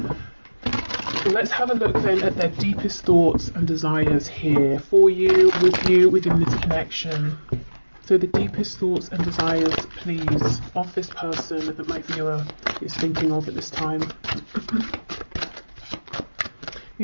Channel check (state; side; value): inverted; both; correlation -1.00